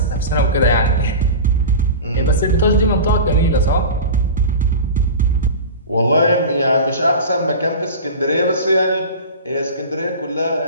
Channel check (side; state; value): both; inverted; correlation -0.31